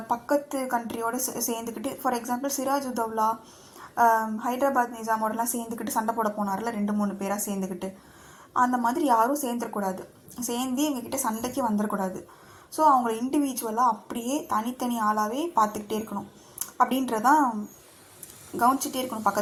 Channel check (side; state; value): both; identical; correlation 1.00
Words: பக்கத்து கண்ட்ரியோடு சேர்ந்துக்கிட்டு, ஃபார் எக்ஸாம்பிள் சிராஜ் உத்தவ்லா ஹைதராபாத் நிஜாமோடலாம் சேர்ந்துக்கிட்டு சண்டை போட போனார்ல 2-3 பேராக சேர்ந்துக்கிட்டு, அந்த மாதிரி யாரும் சேர்ந்துடக்கூடாது, சேர்ந்து இவங்ககிட்ட சண்டைக்கு வந்துடக்கூடாது. ஸோ அவங்கள இண்டிவிஜுவலாக அப்படியே தனித்தனி ஆளாகவே பார்த்துக்கிட்டே இருக்கணும் அப்படின்றதான், கவனிச்சிட்டே இருக்கணும்